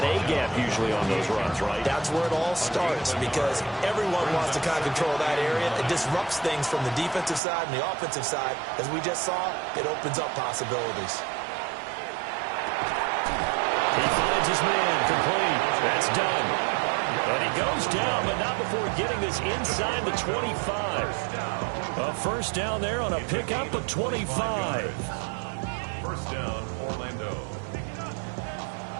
A-gap usually on those runs, right? That's where it all starts because everyone wants to kind of control that area. It disrupts things from the defensive side and the offensive side. As we just saw, it opens up possibilities. He finds his man, complete. That's done. And he goes down, but not before getting this inside the 25. A first down there on a pickup of 25. First down, Orlando.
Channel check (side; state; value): left; drops out; at 7.4 s